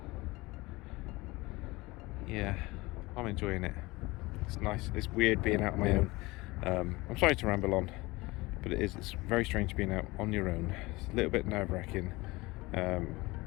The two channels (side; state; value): right; quieter; 21.8 dB